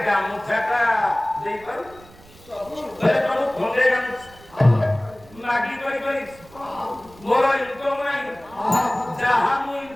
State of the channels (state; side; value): noise; right; rumble, 24 dB below the sound